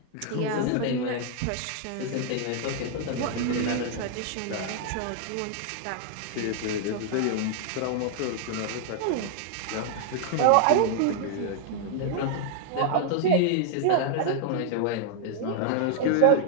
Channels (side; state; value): both; different; correlation 0.00